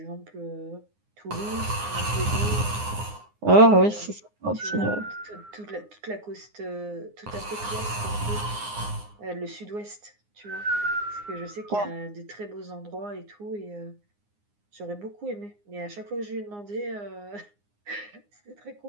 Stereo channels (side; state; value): left; late; 9.7 ms